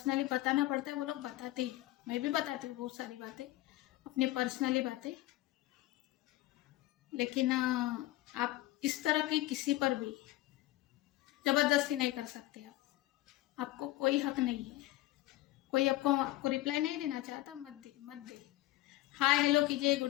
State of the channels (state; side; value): quieter; right; 16.8 dB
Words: बताना पड़ता है वो लोग बताते ही। मैं भी बताती हूँ बहुत सारी बातें, अपनी पर्सनली बातें। लेकिन आप इस तरह की किसी पर भी जबरदस्ती नहीं कर सकते। आपको कोई हक नहीं है। कोई आपको रिप्लाई नहीं देना चाहता, मत दे। हाय हेलो कीजिए,